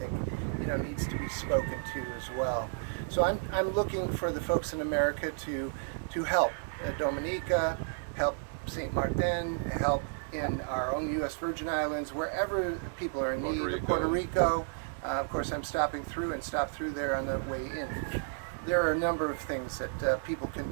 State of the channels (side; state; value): left; silent; digital silence